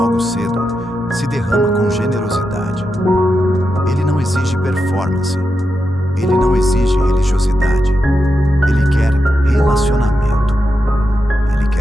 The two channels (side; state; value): both; normal; correlation 0.87